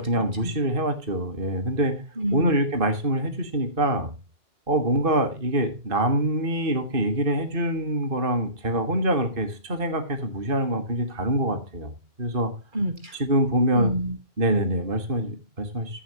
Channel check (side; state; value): left; late; 2.5 ms